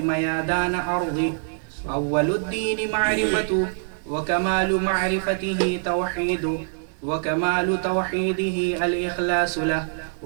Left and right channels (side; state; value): left; silent; digital silence